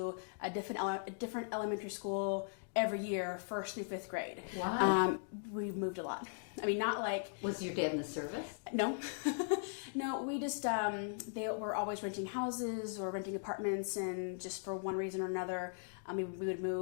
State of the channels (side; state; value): right; silent; digital silence